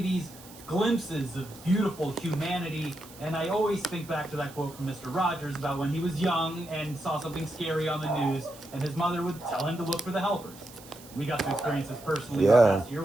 these glimpses of beautiful humanity. And I always think back to that quote from Mr. Rogers about when he was young and saw something scary on the news, and his mother would tell him to look for the helpers. We got to experience this personally last year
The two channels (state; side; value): noise; right; hiss, 20 dB below the sound